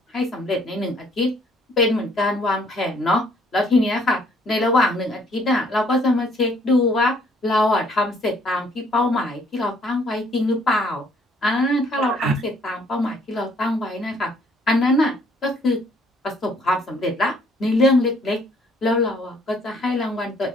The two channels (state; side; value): normal; both; correlation 0.63